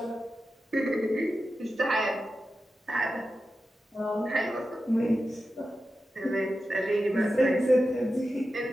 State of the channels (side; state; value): both; normal; correlation 0.92